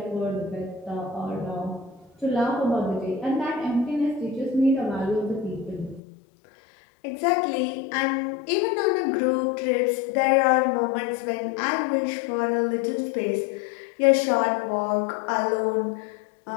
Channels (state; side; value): drops out; right; at 6.0 s